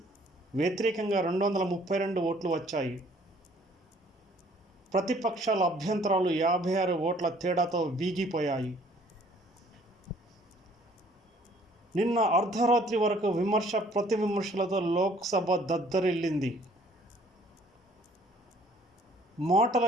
వ్యతిరేకంగా 232 ఓట్లు వచ్చాయి. ప్రతిపక్షాల అభ్యంతరాలు 56 ఓట్ల తేడాతో వీగిపోయాయి. నిన్న అర్ధరాత్రి వరకు విమర్శ ప్రతి విమర్శలతో లోక్సభ దద్దరిల్లింది. మాటల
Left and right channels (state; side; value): normal; both; correlation 0.58